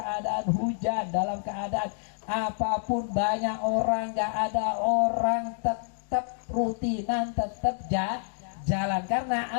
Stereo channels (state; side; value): silent; right; digital silence